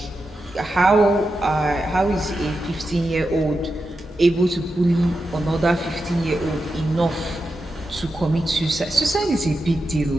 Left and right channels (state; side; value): normal; both; correlation 0.89